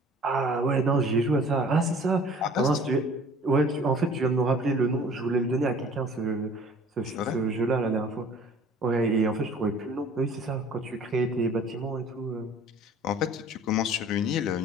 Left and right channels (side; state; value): both; normal; correlation 0.49